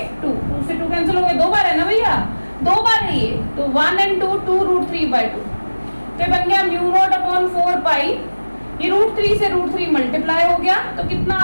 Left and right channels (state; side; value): inverted; both; correlation -1.00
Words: 2 से 2 कैंसिल हो गए, 2 बार है ना भैया, 2 बार है ये, तो 1 and 2 2√3/2, तो बन गया μ0/4 pi, ये √3 से √3 मल्टीप्लाई हो गया, तो कितना